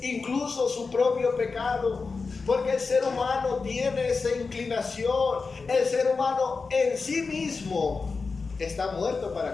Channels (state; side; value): quieter; right; 4.5 dB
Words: incluso su propio pecado. Porque el ser humano tiene esa inclinación. El ser humano en sí mismo está muerto para